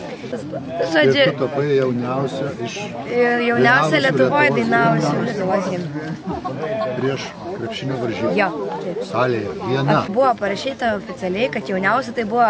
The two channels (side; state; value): both; identical; correlation 1.00